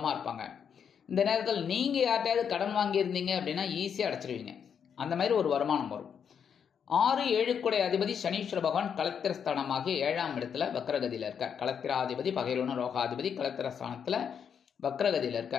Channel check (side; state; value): right; quieter; 7.5 dB